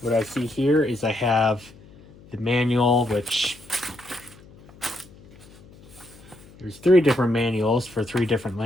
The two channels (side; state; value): left; noise; hum, 23 dB below the sound